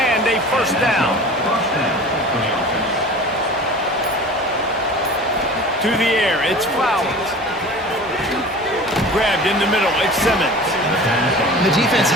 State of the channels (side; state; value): both; normal; correlation 0.39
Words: a 1st down. To the air, it's Flowers. Grabbed in the middle, it's Simmons. The defense